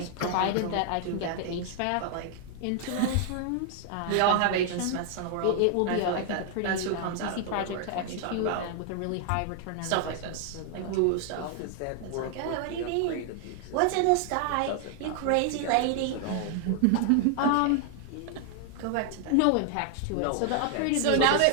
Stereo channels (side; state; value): both; different; correlation 0.00